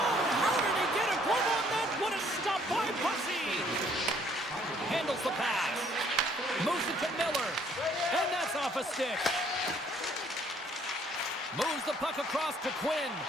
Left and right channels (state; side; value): normal; both; correlation 0.63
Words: how did he get a glove on that? What a stop by Bussy. Handles the pass. Moves it to Miller. And that's off a stick. Moves the puck across to Quinn.